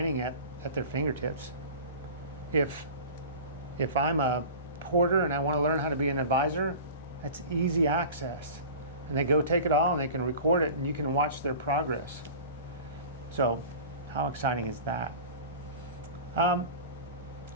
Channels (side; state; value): both; inverted; correlation -0.37